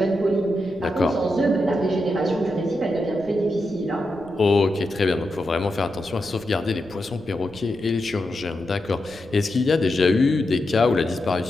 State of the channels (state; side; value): noise; left; rumble, 24 dB below the sound